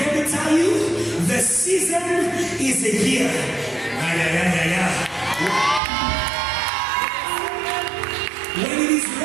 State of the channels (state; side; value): drops out; left; at 5.8 s